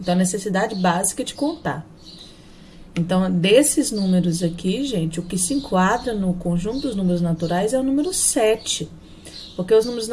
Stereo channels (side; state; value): both; identical; correlation 1.00